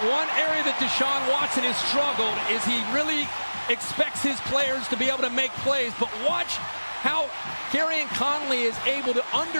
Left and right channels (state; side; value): inverted; both; correlation -1.00